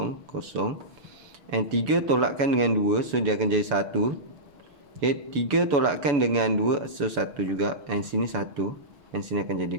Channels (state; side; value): late; left; 6.9 ms